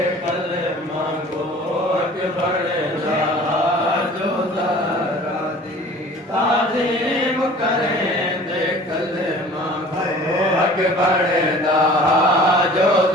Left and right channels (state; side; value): normal; both; correlation 0.46